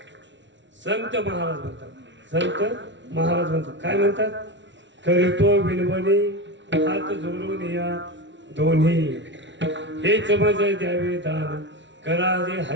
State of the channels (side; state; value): left; late; 0.54 ms